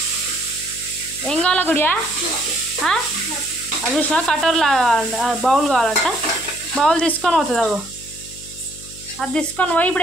ఏం కావాలా గుడియా? అది చూసినా కటోర్లా బౌల్ కావాలంట. బౌల్ తీసుకొని పోతుంది అగో. అది తీసుకొని పోయి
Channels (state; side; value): noise; left; hum, 18 dB below the sound